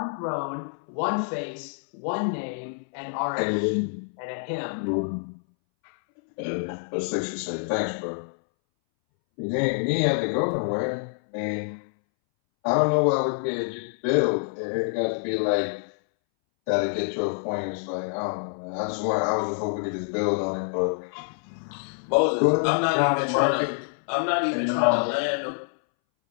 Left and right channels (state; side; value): silent; right; 61 dB below the other